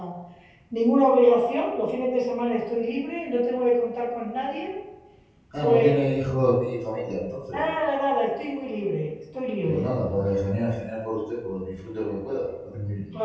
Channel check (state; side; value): identical; both; correlation 1.00